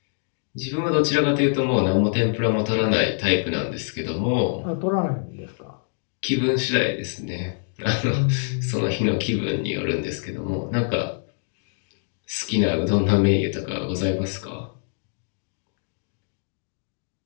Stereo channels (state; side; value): silent; right; digital silence